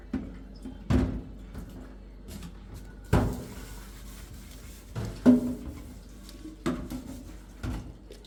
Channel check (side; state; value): both; identical; correlation 1.00